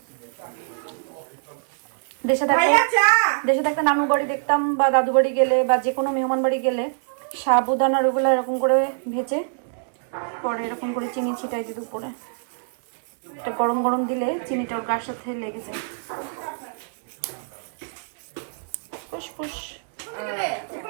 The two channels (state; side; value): silent; left; 61 dB below the other